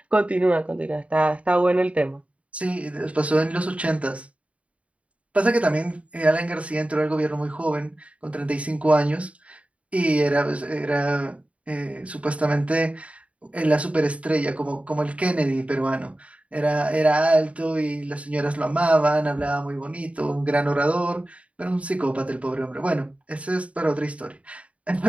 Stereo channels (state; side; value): late; left; 0.064 ms